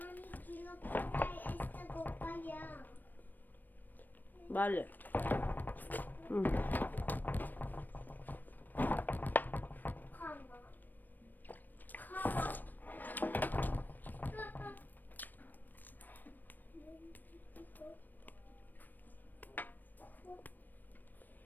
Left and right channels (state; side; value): late; right; 0.089 ms